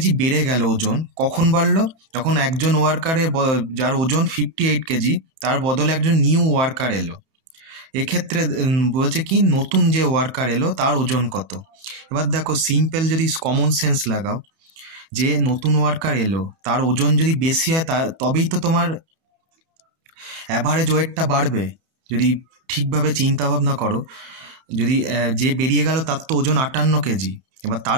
বেড়ে গেল ওজন। কখন বাড়লো? যখন একজন ওয়ার্কারের যার ওজন 58 কেজি তার বদলে একজন নিউ ওয়ার্কার এলো। এক্ষেত্রে বলছে কি নতুন যে ওয়ার্কার এলো তার ওজন কত। এবার দেখো সিম্পল যদি কমন সেন্স লাগাও, যে নতুন ওয়ার্কার এলো তার ওজন যদি বেশি হয় তবেই তো তোমার অ্যাভারেজ ওয়েটটা বাড়বে। যদি ঠিকভাবে চিন্তা ভাবনা করো, যদি যে বেরিয়ে গেল তার তো ওজন 58 কেজি, এবার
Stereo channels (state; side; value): late; left; 32 ms